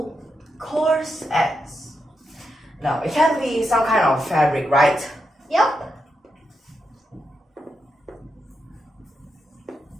cars as. Now, it can be some kind of fabric, right? Yep.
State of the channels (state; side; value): normal; both; correlation 0.85